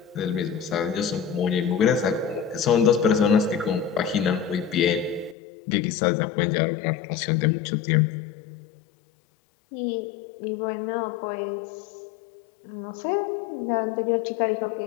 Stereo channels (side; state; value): right; drops out; at 5.4 s